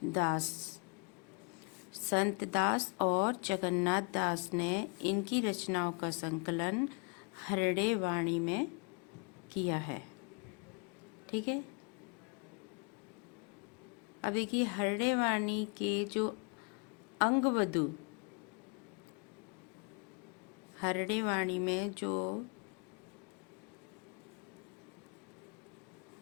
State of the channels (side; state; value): right; quieter; 34.3 dB